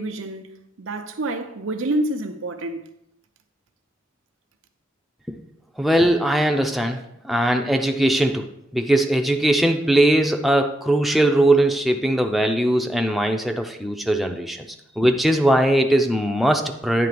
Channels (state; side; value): normal; both; correlation 0.83